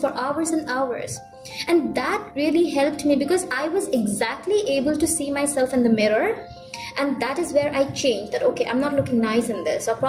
hours and hours. And that really helped me because I was exactly able to see myself in the mirror. And that is where I changed that, okay, I'm not looking nice in this, or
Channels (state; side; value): identical; both; correlation 1.00